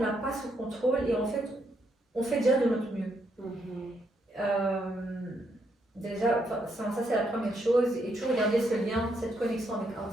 pas sous contrôle et en fait, on fait déjà de notre mieux. Déjà, ça c'est la première chose, et toujours garder ce lien, cette connexion avec Allah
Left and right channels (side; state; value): both; normal; correlation 0.77